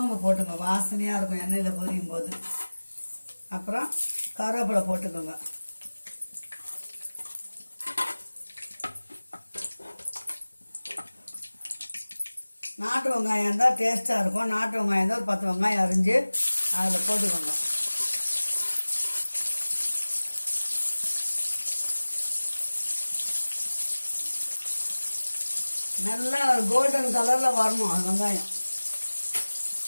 போட்டுங்க, வாசனையாக இருக்கும் எண்ணெயில் பொரியும் போது. அப்புறம் கருவேப்பிலை போட்டுக்கோங்க. நாட்டு வெங்காயம் இருந்தால் டேஸ்ட்டாக இருக்கும். நாட்டு வெங்காயம் இருந்தால் ஒரு 10 வெங்காயம் அரிஞ்சு அதில் போட்டுக்கோங்க. நல்லா ஒரு கோல்டன் கலரில் வரணும் அந்த வெங்காயம்.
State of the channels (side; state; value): both; inverted; correlation -1.00